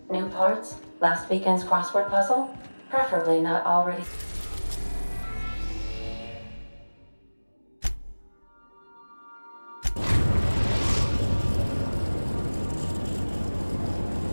New parts? Last weekend's crossword puzzle? Preferably not already...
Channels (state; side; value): inverted; both; correlation -1.00